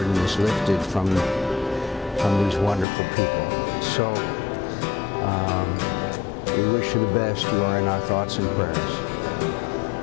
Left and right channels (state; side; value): drops out; right; at 2.9 s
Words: is lifted from these wonderful people. So we wish you the best. You are in our thoughts and prayers.